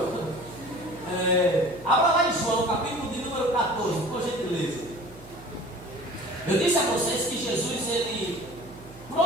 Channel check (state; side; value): noise; right; hum, 19 dB below the sound